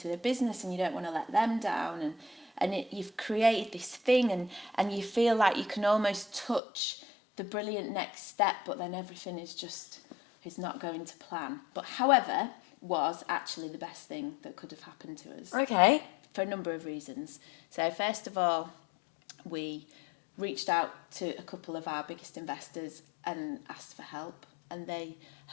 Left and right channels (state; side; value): drops out; right; at 6.6 s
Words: the business and you don't want to let them down and you've created this thing and you feel like you can almost touch the brilliant next step, but then everything is not going to plan. But however, was actually the best thing that could have happened to us. Okay. For a number of reasons. So first of all, we reached out to a couple of our biggest investors and asked for help, and they